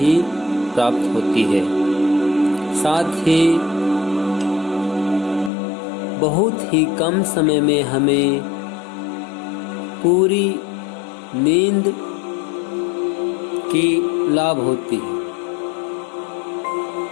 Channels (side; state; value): right; drops out; at 5.5 s